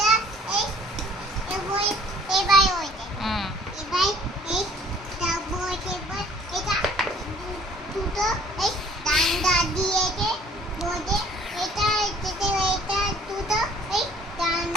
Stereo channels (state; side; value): normal; both; correlation 0.55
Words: এই এবার ওইটা হুম, এবার এই তারপর এবার এটা দুটো এই ডান্ডা দিয়েছে বোঝে এটা এটা দুটো এই